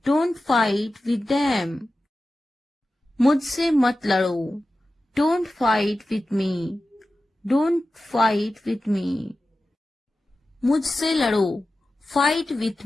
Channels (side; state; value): both; normal; correlation 0.94